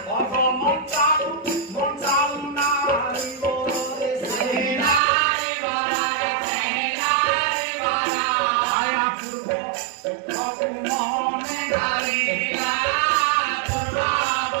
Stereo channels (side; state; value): left; drops out; at 5.0 s